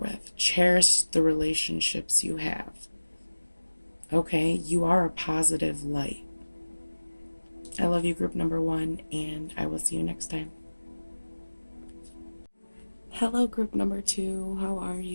Cherish the relationships you have. Okay? You are a positive light. I love you, group number 1, and I will see you next time. Hello, group number 2. How are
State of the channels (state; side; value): inverted; both; correlation -1.00